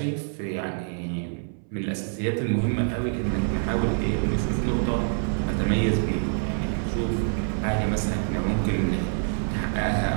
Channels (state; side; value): silent; left; 59 dB below the other